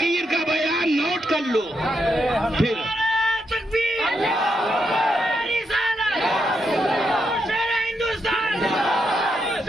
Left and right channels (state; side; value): normal; both; correlation 0.82